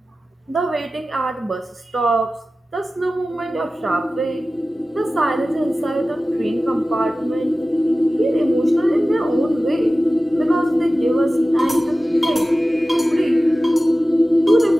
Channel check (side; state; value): both; normal; correlation 0.96